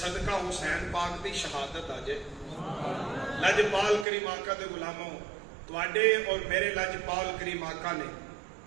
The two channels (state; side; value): drops out; left; at 4.0 s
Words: صدقہ حسین پاک دی شہادت آجے۔ لجپال کریم آقا دے غلاموں، تواڈے اور میرے لجپال کریم آقا نے